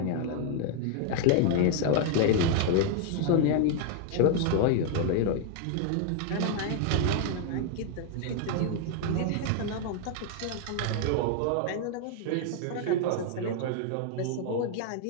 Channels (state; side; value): different; both; correlation 0.00